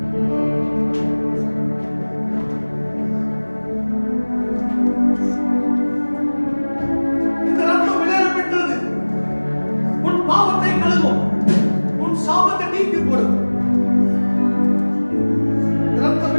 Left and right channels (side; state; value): both; inverted; correlation -1.00